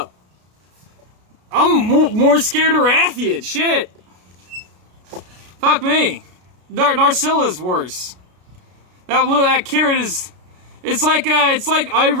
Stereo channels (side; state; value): left; late; 33 ms